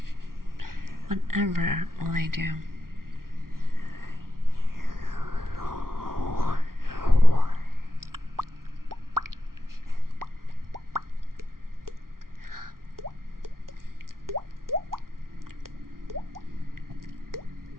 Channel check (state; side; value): late; left; 0.92 ms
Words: Whatever will I do?